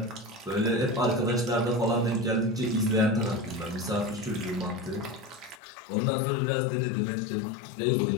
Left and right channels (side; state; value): right; drops out; at 5.6 s